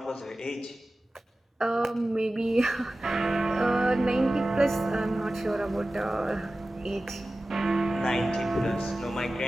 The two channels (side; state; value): both; normal; correlation 0.96